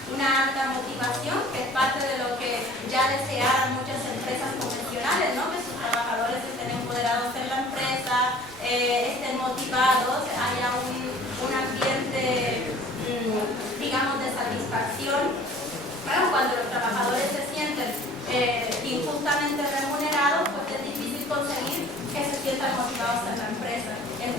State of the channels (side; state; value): both; normal; correlation 0.49